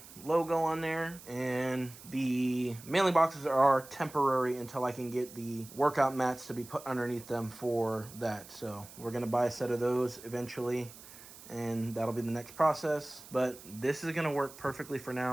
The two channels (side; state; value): right; noise; hiss, 18 dB below the sound